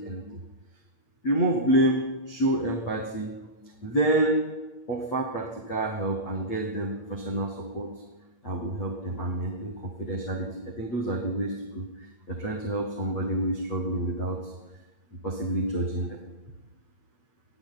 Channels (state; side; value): late; right; 8.7 ms